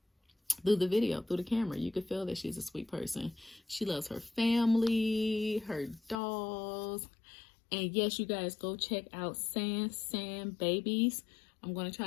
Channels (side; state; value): right; drops out; at 6.2 s